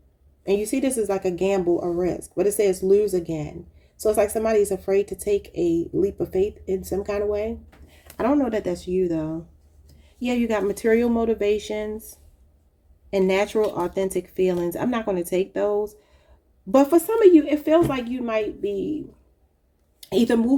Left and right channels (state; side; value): identical; both; correlation 1.00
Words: And you see this is like a gamble, a risk. But it says lose again. So it's like somebody's afraid to take a leap of faith in some kind of way. I don't know that that's you, though. Yeah, you got material motivations and natural, authentic feelings. I'm not going to take those. But for some of you, it feels like you might be either